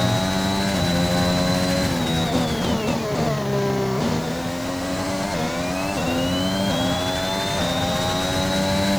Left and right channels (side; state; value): left; noise; hiss, 21 dB below the sound